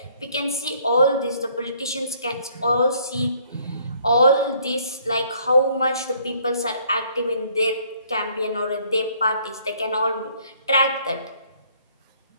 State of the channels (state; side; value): inverted; both; correlation -0.63